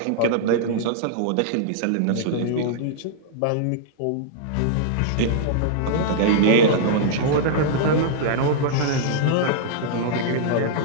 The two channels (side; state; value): both; different; correlation -0.01